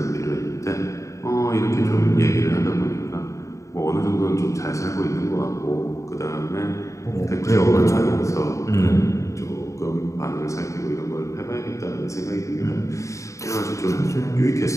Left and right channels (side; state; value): right; late; 0.15 ms